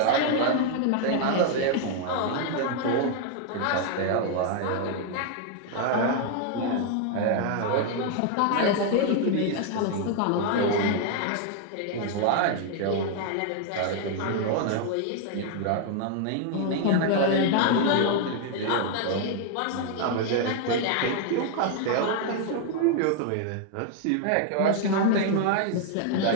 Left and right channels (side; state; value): both; different; correlation 0.00